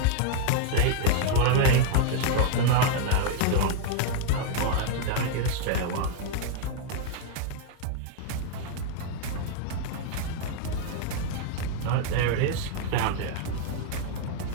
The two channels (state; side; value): different; both; correlation 0.00